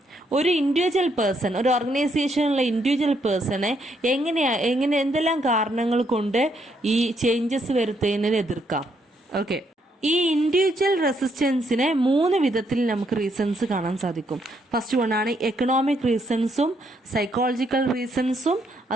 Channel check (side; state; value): both; normal; correlation 0.74